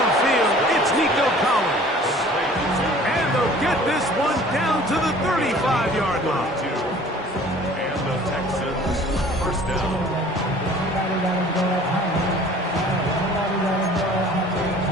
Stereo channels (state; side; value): normal; both; correlation 0.49